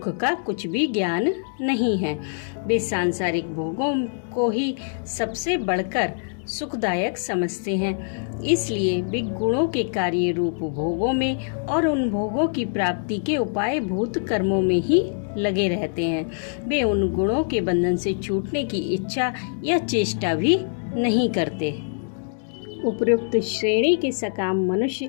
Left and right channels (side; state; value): right; silent; digital silence